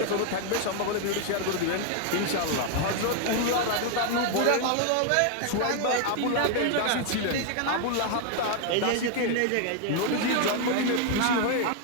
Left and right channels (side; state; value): both; different; correlation 0.01